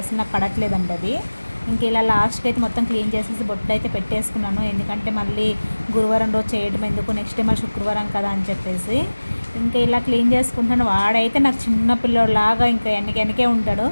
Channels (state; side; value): inverted; both; correlation -1.00